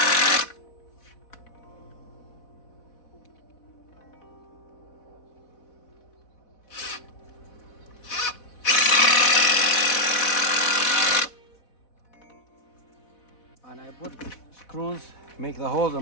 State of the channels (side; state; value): right; late; 4.1 ms